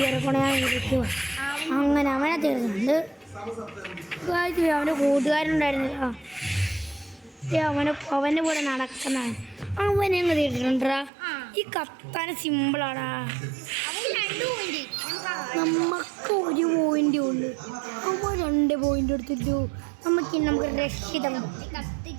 ഇരിക്കുക. അങ്ങനെ അവനെ തീർക്കുന്നുണ്ട്. അവൻ്റെ കൂട്ടുകാരുണ്ടായിരുന്നില്ല. അവൻ്റെ കൂടെ നടക്കുന്നതാണ്. അവനെ അങ്ങ് തീർത്തിട്ടുണ്ടാ. ഈ കത്താൻ സിമ്പിളാടാ. നമുക്ക് 1 പോയിന്റ് ഉള്ളു. അവൻ 2 പോയിന്റ് എടുത്തിട്ടു. നമുക്ക് രക്ഷിതം.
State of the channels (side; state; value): left; drops out; at 11.1 s